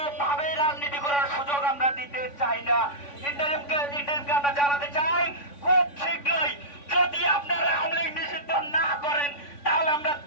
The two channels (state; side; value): late; right; 3.5 ms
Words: রাজনীতি করার সুযোগ আমরা দিতে চাই না। ইন্টারিমকে আমরা জানাতে চাই, খুব শীঘ্রই যদি আপনারা আওয়ামী লীগ নিষিদ্ধ না করেন তাহলে আমরা